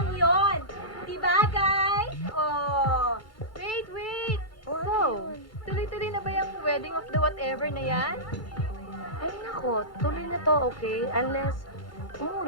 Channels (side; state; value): right; late; 2.3 ms